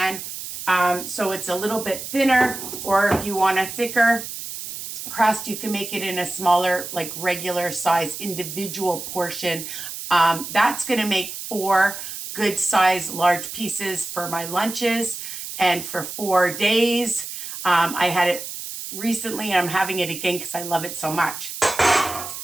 so it's a little bit thinner, or if you want a thicker crust, you can make it in a smaller, like regular size individual portion. That's going to make 4 good size large pieces for my lunches and for 4 days. I had it recently and I'm having it again because I love it so much.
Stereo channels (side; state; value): right; noise; hiss, 8 dB below the sound